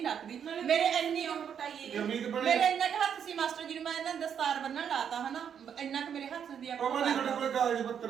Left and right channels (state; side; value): quieter; left; 8.1 dB